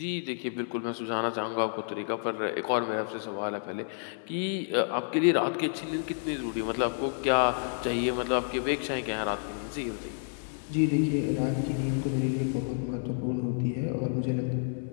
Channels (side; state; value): right; silent; 57 dB below the other